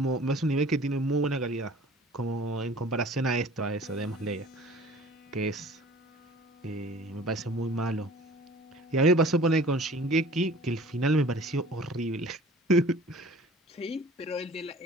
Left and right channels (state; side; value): normal; both; correlation 0.47